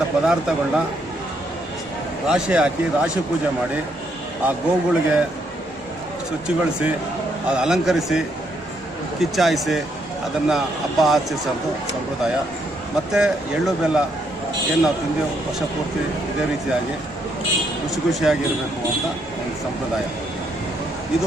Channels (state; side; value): normal; both; correlation 0.74